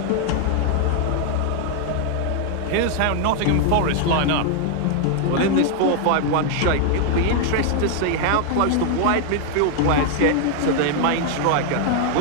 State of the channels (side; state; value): both; different; correlation 0.00